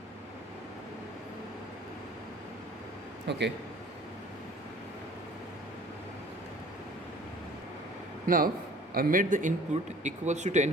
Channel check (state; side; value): normal; both; correlation 0.50